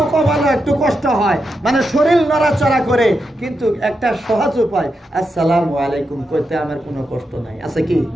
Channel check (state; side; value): normal; both; correlation 0.86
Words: কপালে একটু কষ্ট হয়, মানে শরীর নড়াচড়া করে, কিন্তু একটা সহজ উপায় আসসালামু আলাইকুম করতে আমার কোনো কষ্ট নাই, আছে কি?